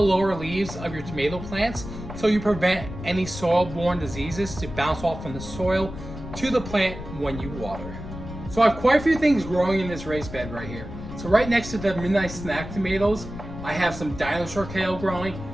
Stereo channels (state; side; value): noise; left; rumble, 10 dB below the sound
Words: lower leaves of your tomato plants so you prevent any soil-borne diseases to bounce off from the soil to the plant when you water. So I have quite a few things growing in this raised bed right here. So right next to the Midnight Snack tomatoes, I have some Dinosaur Kale growing.